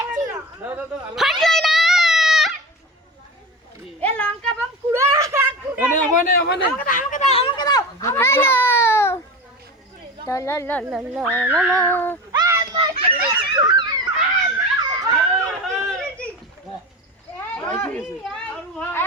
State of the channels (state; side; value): normal; both; correlation 0.29